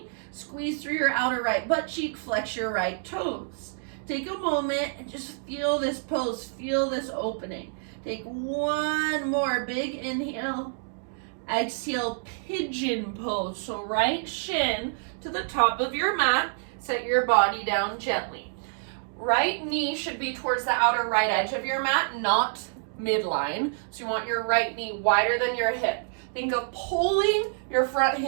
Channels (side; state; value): left; silent; digital silence